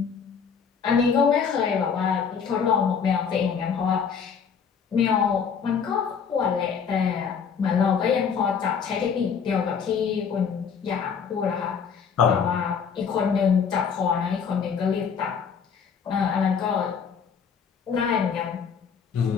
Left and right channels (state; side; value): quieter; right; 6.6 dB